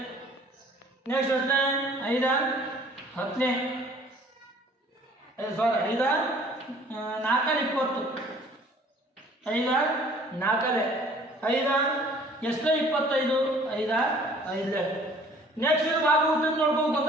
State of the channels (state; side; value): normal; both; correlation 0.53